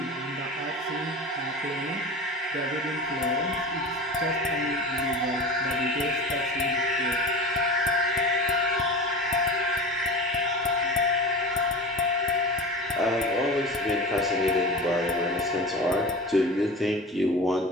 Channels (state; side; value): normal; both; correlation 0.31